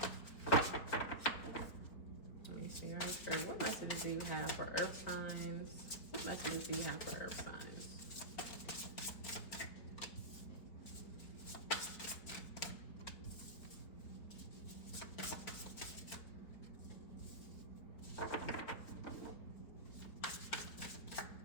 Let me see, Earth Spirit, what messages do you have for earth signs? What messages do you have for earth signs?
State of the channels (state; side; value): late; right; 4.4 ms